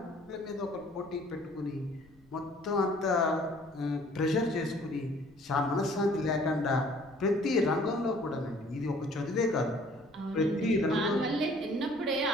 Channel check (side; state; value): left; noise; rumble, 30 dB below the sound